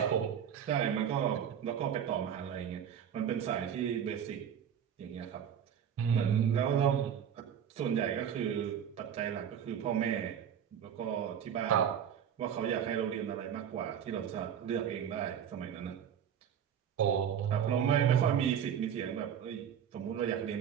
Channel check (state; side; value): quieter; left; 8.7 dB